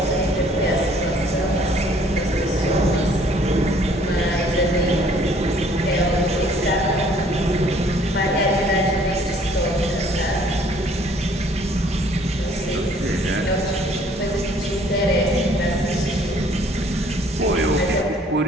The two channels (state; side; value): normal; both; correlation 0.59